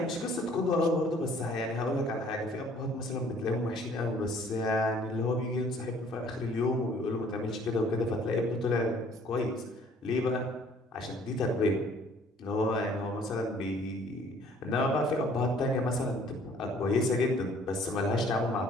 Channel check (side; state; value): both; normal; correlation 0.57